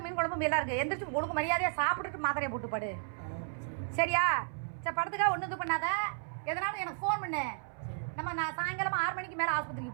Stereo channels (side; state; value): left; silent; 55 dB below the other